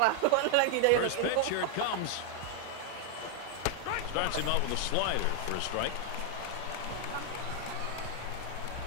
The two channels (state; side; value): different; both; correlation 0.00